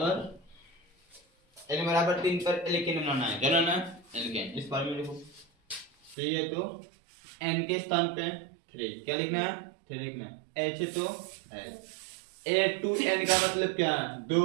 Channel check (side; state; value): left; drops out; at 6.2 s